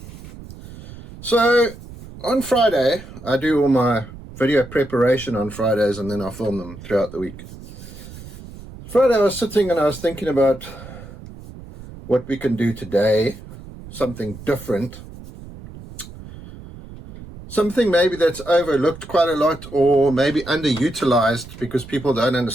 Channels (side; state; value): right; noise; rumble, 15 dB below the sound